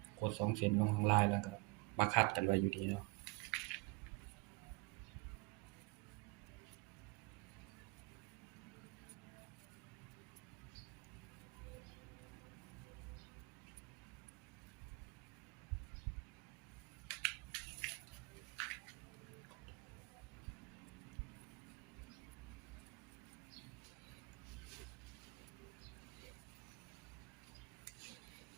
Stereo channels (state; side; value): quieter; left; 24.1 dB